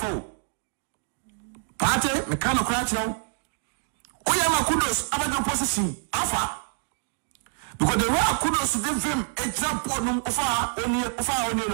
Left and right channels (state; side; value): silent; left; 59 dB below the other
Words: party me kan okra chiro oyama kudos abajo position afa because the way kudos dey vim extra board no ofa oni